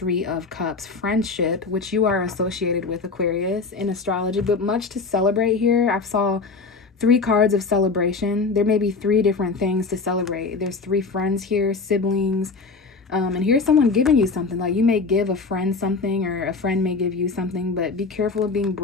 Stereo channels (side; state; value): right; quieter; 4.3 dB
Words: of Cups, friendship, which you are associated with, Aquarius, in astrology. But much to celebrate here. I saw 3 cards of celebration. There may be 3 different things to celebrate. There's 3 friends here, siblings, and here's someone giving you something. Like you may give a friend something, or a friend may give you something, but be careful of being